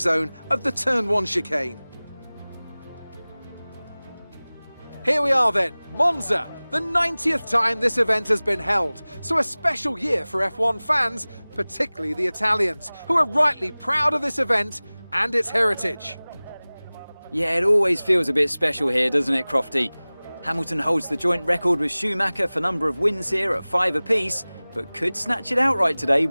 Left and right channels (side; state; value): both; inverted; correlation -0.99